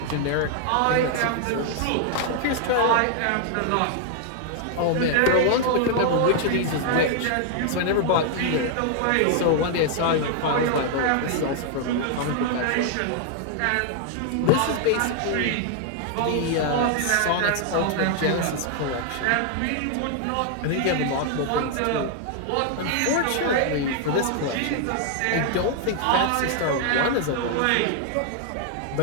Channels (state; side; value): different; both; correlation 0.00